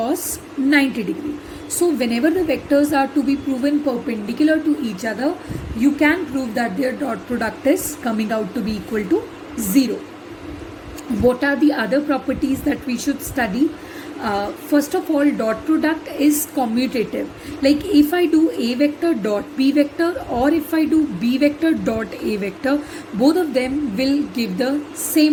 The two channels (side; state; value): both; identical; correlation 1.00